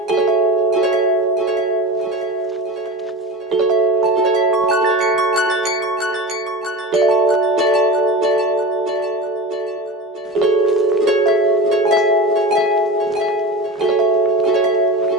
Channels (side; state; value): both; normal; correlation 0.32